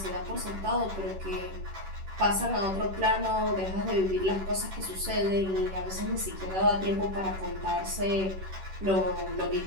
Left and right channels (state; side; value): late; left; 10 ms